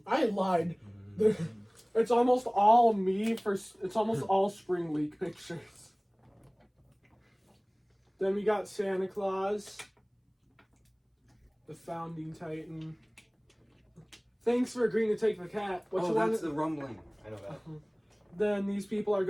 I lied. It's almost all me it's almost all Spring Week pictures. Then we got Santa Claus. The Founding Titan. Thanks for agreeing to take the cat. That's the rumbling. I know that. Then these people are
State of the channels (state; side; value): identical; both; correlation 1.00